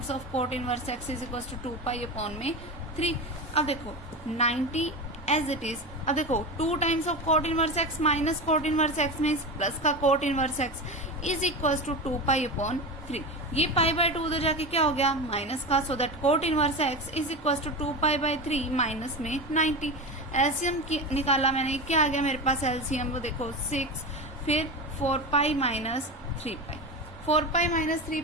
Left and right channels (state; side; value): normal; both; correlation 0.23